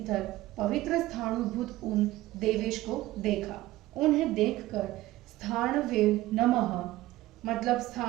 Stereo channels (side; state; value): left; quieter; 17.0 dB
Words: पवित्र स्थाणुभूत उन देवेश को देखा। उन्हें देखकर स्थाणवे नमः मतलब